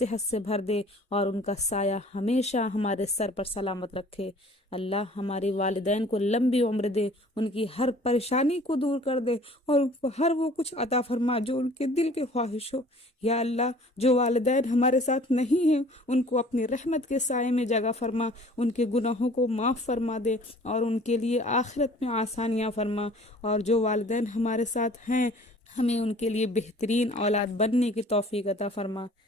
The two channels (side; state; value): both; normal; correlation 0.51